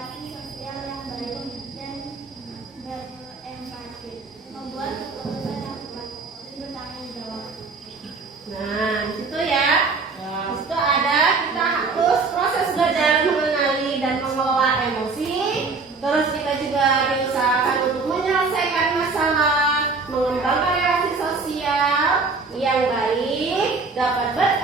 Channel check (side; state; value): left; quieter; 4.3 dB